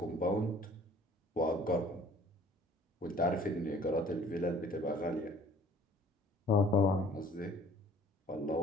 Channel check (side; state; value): both; normal; correlation 0.54